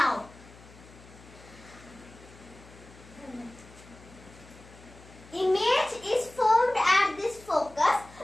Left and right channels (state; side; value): noise; left; hum, 21 dB below the sound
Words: image is formed at this focus